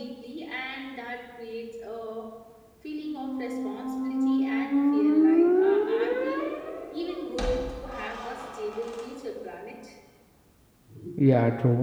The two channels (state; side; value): identical; both; correlation 1.00